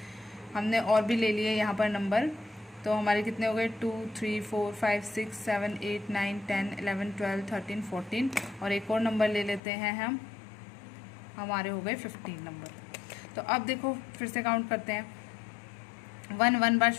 हमने और भी ले लिए यहाँ पर नंबर, तो हमारे कितने हो गए 2 3 4 5 6 7 8 9 10 11 12 13 14, और एक और नंबर ले लेते हैं हम, हमारे हो गए 15 नंबर। तो अब देखो फिर से काउंट करते हैं। 1 1 बार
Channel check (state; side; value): drops out; right; at 9.6 s